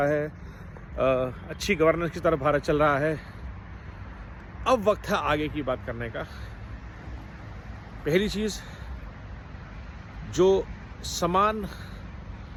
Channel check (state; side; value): identical; both; correlation 1.00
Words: है, अच्छी गवर्नेंस की तरफ भारत चल रहा है। अब वक्त है आगे की बात करने का। पहली चीज़, जो समान